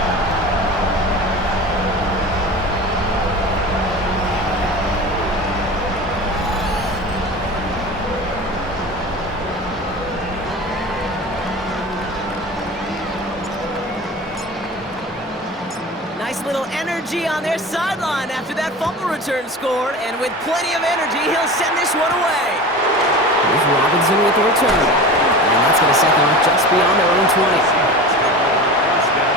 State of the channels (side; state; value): both; normal; correlation 0.33